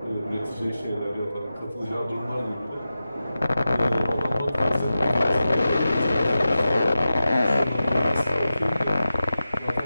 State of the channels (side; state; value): both; inverted; correlation -0.93